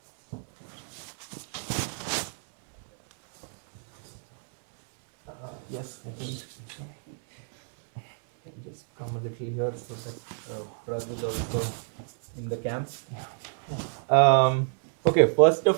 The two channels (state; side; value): silent; left; 58 dB below the other